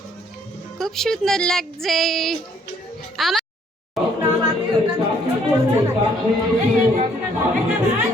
খুব সুন্দর লাগছে আমার।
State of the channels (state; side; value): normal; both; correlation 0.64